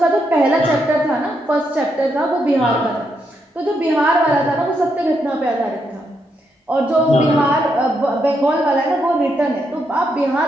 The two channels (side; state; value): both; normal; correlation 0.79